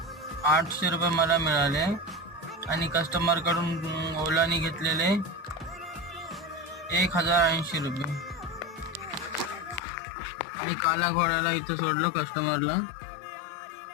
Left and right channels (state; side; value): drops out; right; at 9.8 s